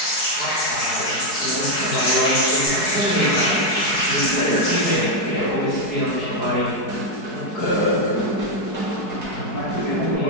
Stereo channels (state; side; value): late; right; 4.7 ms